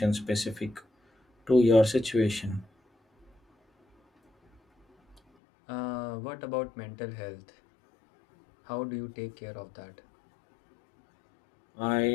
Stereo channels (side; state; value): right; drops out; at 5.2 s